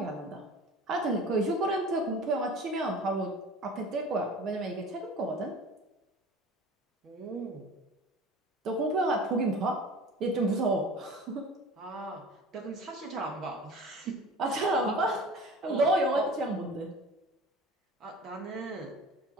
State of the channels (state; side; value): normal; both; correlation 0.40